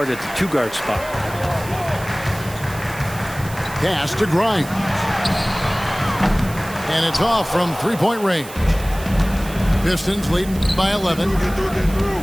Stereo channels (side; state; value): right; noise; hiss, 16 dB below the sound